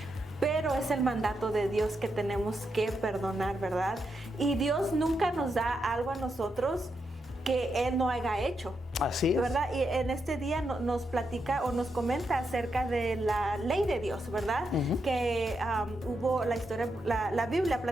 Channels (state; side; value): normal; both; correlation 0.83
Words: pero es el mandato de Dios que tenemos que perdonar, ¿verdad? Y Dios nunca nos da algo a nosotros que Él no haya hecho. Así es. ¿Verdad? Y en este día nos platica o nos comenta acerca de la ley de Dios, ¿verdad? Que hubo la historia, la Biblia